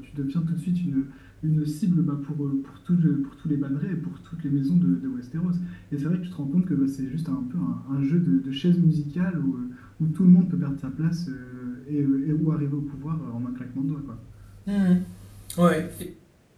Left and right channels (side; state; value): both; identical; correlation 1.00